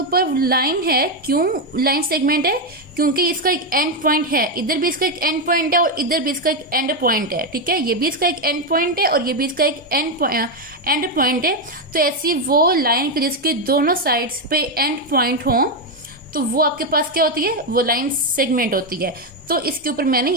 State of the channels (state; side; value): normal; both; correlation 0.05